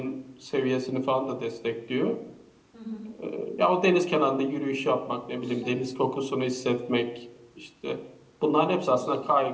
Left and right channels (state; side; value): identical; both; correlation 1.00